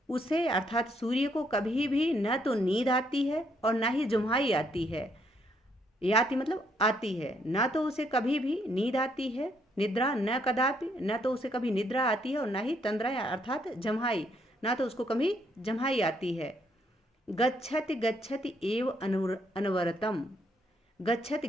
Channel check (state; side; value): normal; both; correlation 0.72